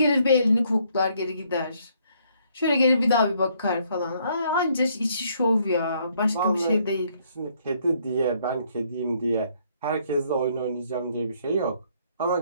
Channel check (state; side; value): inverted; both; correlation -0.68